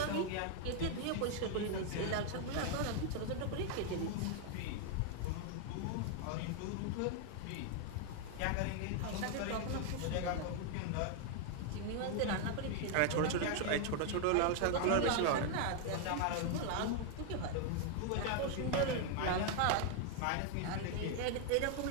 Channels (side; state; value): both; different; correlation 0.00